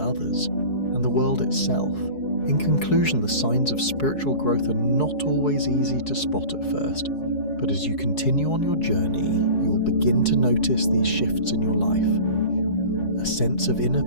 and the world itself. In conclusion, the signs of spiritual growth are not always easy to spot at first, but as you continue on your journey, you'll begin to notice these shifts in your life. A sense of inner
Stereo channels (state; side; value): late; right; 4.7 ms